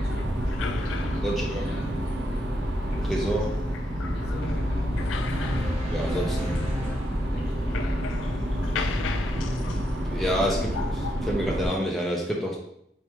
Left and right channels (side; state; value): both; normal; correlation 0.80